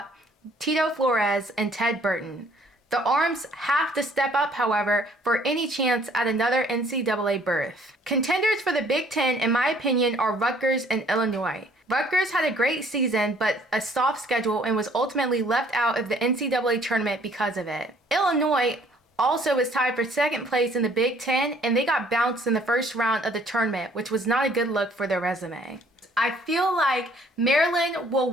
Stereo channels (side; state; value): both; normal; correlation 0.59